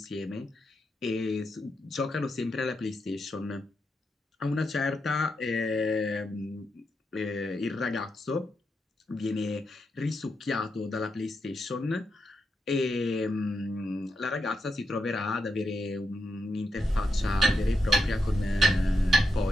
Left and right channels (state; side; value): normal; both; correlation 0.85